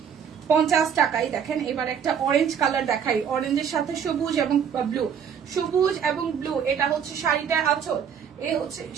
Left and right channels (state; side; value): quieter; left; 7.8 dB